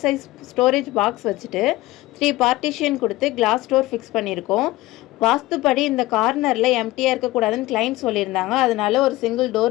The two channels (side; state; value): right; quieter; 18.4 dB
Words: சைஸ் ஸ்டோரேஜ் பாக்ஸ் வச்சுட்டு 3 பார்ட்டிஷன் கொடுத்து கிளாஸ் டோர் ஃபிக்ஸ் பண்ணியிருக்கோம். வாஸ்துப்படி இந்த கார்னரில் எம்டியாக இருக்கக்கூடாதுன்னு கிளைண்ட் சொல்லியிருந்தாங்க. அதனால ஒரு சிங்கிள்